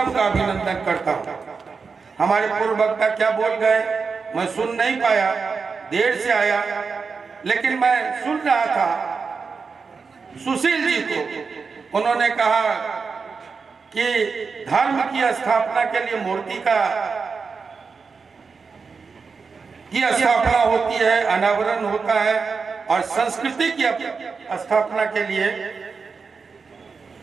का अभिनंदन करता हूं। हमारे पूर्व वक्ता क्या बोल गए मैं सुन नहीं पाया, देर से आया, लेकिन मैं सुन रहा था सुशील जी को। उन्होंने कहा कि धर्म की स्थापना के लिए मूर्ति की स्थापना होती है, अनावरण होता है, और संस्कृति की स्थापना के लिए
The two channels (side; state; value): left; quieter; 5.0 dB